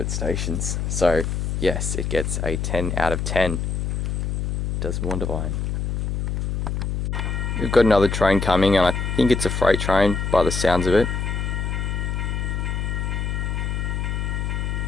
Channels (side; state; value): left; noise; hum, 1 dB below the sound